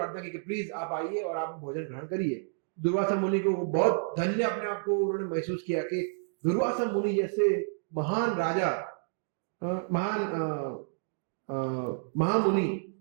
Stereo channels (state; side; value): silent; left; digital silence